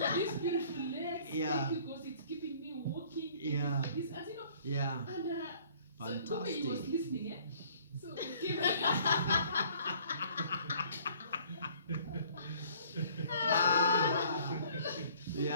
these beautiful legs. Yeah. Thank you because it's keeping me walking. Thank Yeah. you for this, as you know. Yeah. And so the way Fantastic. he was listening, eh? So it came.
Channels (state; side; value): inverted; both; correlation -0.56